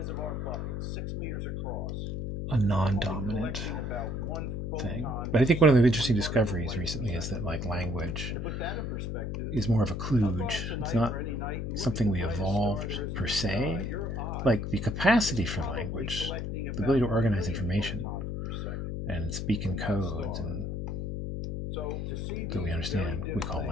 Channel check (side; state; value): left; noise; hum, 3 dB below the sound